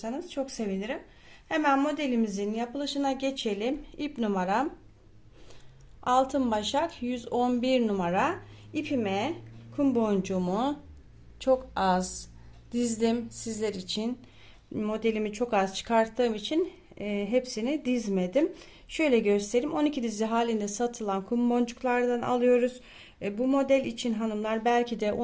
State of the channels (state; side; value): identical; both; correlation 1.00